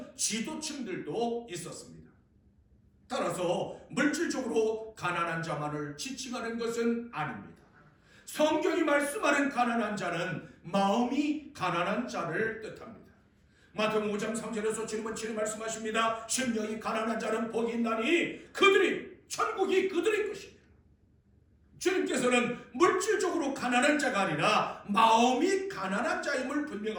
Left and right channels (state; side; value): identical; both; correlation 1.00